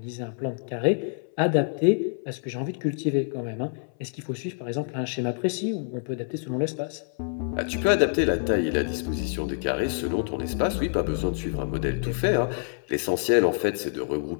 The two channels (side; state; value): right; silent; 60 dB below the other